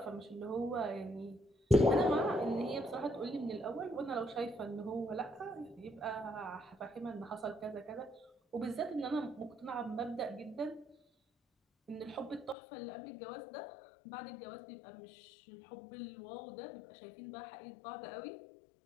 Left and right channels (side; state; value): right; drops out; at 12.6 s